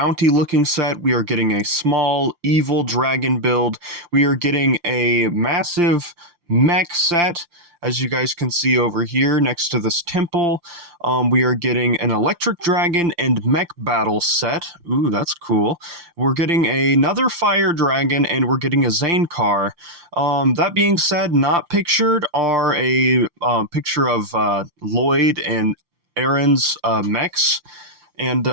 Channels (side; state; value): left; late; 5.8 ms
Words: looking set. We are getting a small evil dragon build. We are getting a massive mech set, as you guys can see over here next to this temple. We are getting an electric dragon and mech battle set. Ooh, that's cool. We're getting another fire dragon, and we're getting a Zane car. That being said, not pictured are a picture of Lloyd and Aaron's mechs, and